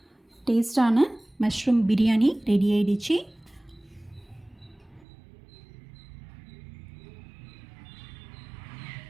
டேஸ்டான மஷ்ரூம் பிரியாணி ரெடி ஆகிடுச்சு.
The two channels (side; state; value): left; drops out; at 5.1 s